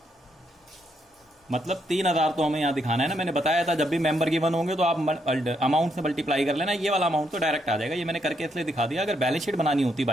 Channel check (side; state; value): both; normal; correlation 0.76